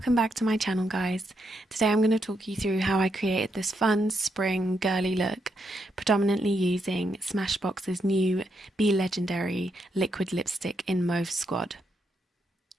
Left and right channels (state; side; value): normal; both; correlation 0.80